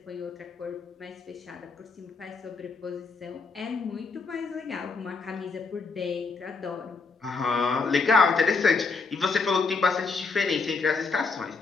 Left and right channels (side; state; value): right; quieter; 4.4 dB